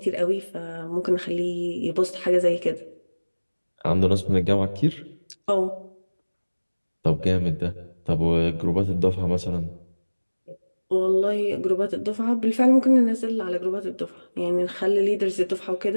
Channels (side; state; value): both; inverted; correlation -1.00